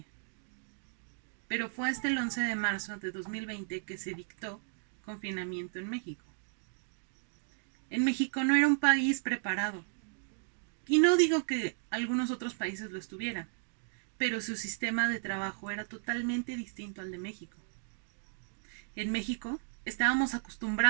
pero fue hasta el 11 de marzo de 2020 que se dictó confinamiento en México. En México no era un país preparado, y no digo que algunos otros países lo estuvieran, pero su sistema de trabajo era totalmente distinto al de México. En México estábamos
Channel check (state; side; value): silent; left; digital silence